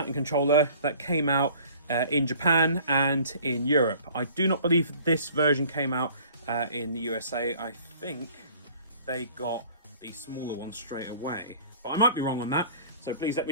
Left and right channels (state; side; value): inverted; both; correlation -0.50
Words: controller that came out in Japan and in Europe. I do not believe this version came out in the USA. I think they got the smaller one straight away, but I might be wrong on that, so please let me